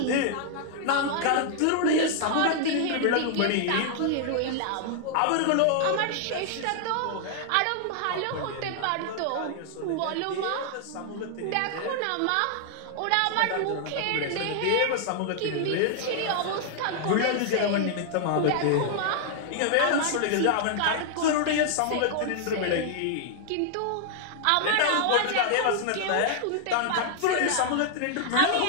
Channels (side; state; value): both; different; correlation -0.01